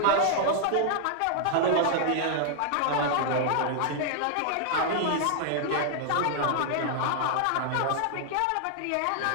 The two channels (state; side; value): different; both; correlation 0.00